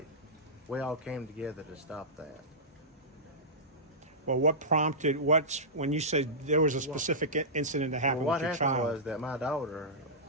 we all came together to stop that. Well, what prompted, when you said there was a specific incident that happened Well, with your what happened child? was that my daughter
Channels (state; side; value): normal; both; correlation -0.15